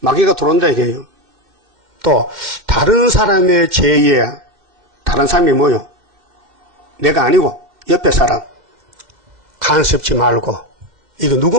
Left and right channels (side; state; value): left; late; 2.5 ms